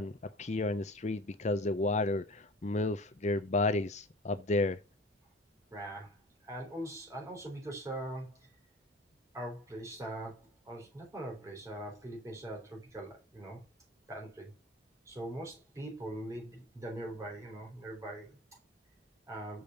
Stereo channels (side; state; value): both; normal; correlation 0.40